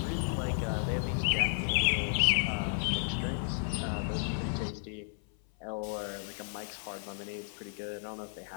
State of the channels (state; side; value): silent; right; 56 dB below the other